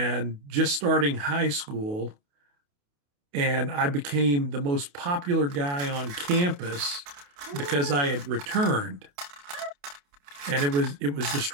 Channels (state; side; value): late; left; 28 ms